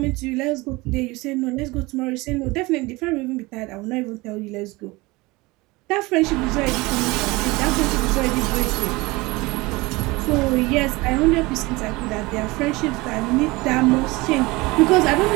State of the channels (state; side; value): quieter; left; 22.5 dB